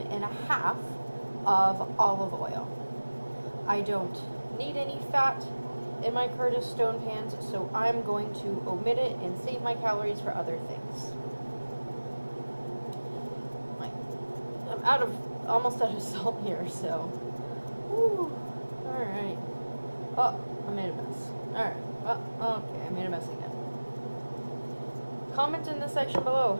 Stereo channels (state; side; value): inverted; both; correlation -1.00